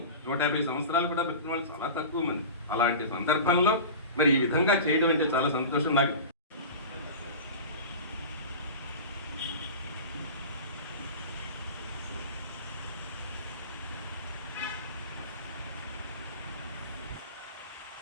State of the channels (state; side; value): inverted; both; correlation -0.32